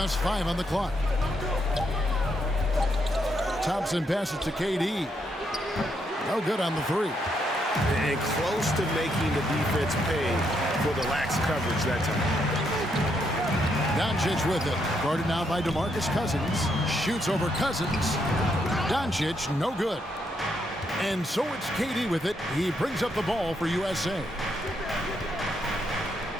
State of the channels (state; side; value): normal; both; correlation 0.77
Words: 5 on the clock. Thompson passes to KD. No good on the 3. And close to making the defense pay for the lax coverage that time. Doncic with it. Guarded now by DeMarcus Cousins. Shoots over Cousins. Doncic, no good. And so it's KD with it. He brings up the ball for USA.